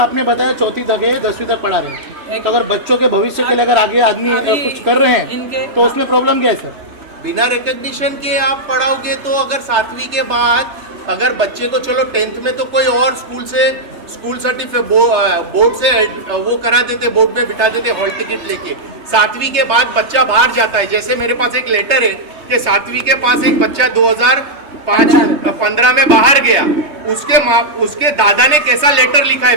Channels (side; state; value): left; late; 3.3 ms